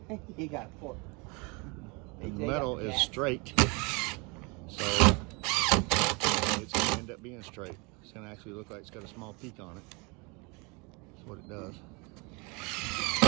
He got a fork. The metal is straight, so it's going to end up being straight. It's going to actually look like it's got a small peak on it. That's what it does.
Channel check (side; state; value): left; quieter; 29.3 dB